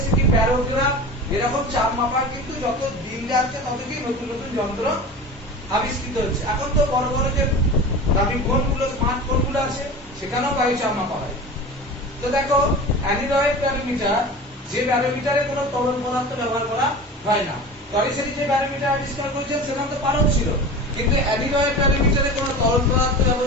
কি ব্যারোগ্রাফ। এরকম চাপ মাপার কিন্তু যত দিন যাচ্ছে তত কি নতুন নতুন যন্ত্র আবিষ্কৃত হচ্ছে। এখন তো বড় বড় যে দামি ফোনগুলো, স্মার্ট ফোনগুলো আছে সেখানেও বায়ু চাপ মাপা হয়। তো দেখো অ্যানিলয়েড ব্যারোমিটার, যে ব্যারোমিটারে কোনো তরল পদার্থ ব্যবহার করা হয় না। টরিসেটি যে ব্যারোমিটার আবিষ্কার করেছেন সেখানে তো পারদ ছিল, কিন্তু অ্যানিলয়েড ব্যারোমিটারে কোনো তরল পদার্থ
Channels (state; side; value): normal; both; correlation 0.33